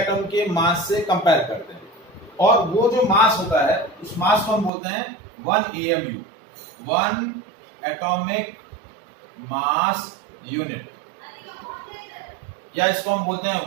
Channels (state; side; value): drops out; left; at 4.7 s